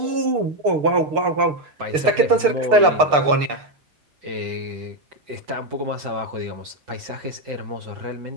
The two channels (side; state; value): left; late; 6.7 ms